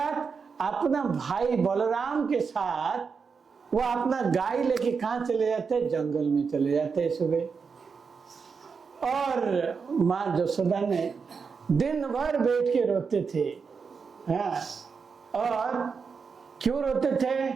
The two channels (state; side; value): quieter; left; 5.5 dB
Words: अपना भाई बलराम के साथ वो अपना गाय लेके कहाँ चले जाते, जंगल में चले जाते सुबह। और माँ यशोदा ने दिन भर बैठ के रोते थे। हाँ, और क्यों रोते थे,